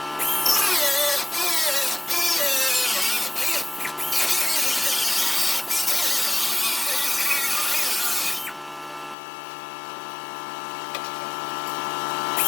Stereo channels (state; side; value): drops out; right; at 9.2 s